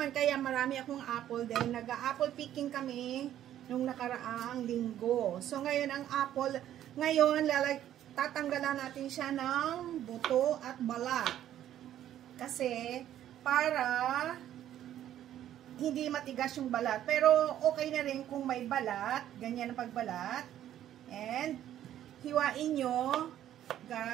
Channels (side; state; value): left; quieter; 11.7 dB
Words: kaya marami akong apple dahil nag-apple picking kami nung nakaraang linggo. So ngayon ang apple, tatanggalan natin siya ng buto at balat. Kasi para hindi matigas yung balat. Pero okay na rin kung may balat. Ganyan ang pagbalat. And hiwain nyo,